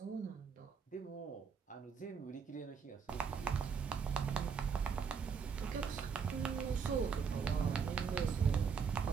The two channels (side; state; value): left; quieter; 6.2 dB